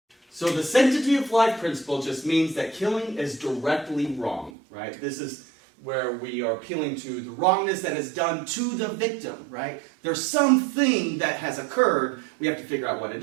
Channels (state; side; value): drops out; left; at 4.5 s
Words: So the sanctity of life principle just means that killing is directly wrong, right? This is where we are appealing to the wrongness that is done to the victim, right? There's something that has occurred, we have to figure out what it